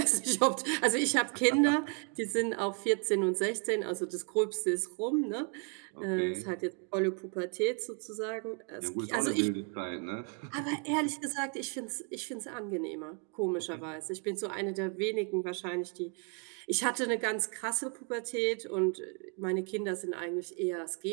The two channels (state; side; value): quieter; left; 37.7 dB